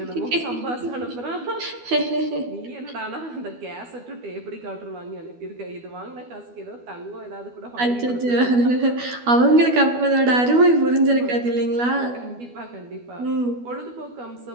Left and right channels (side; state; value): left; late; 12 ms